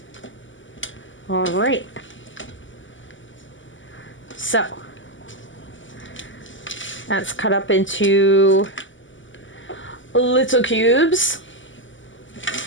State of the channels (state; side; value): late; right; 0.55 ms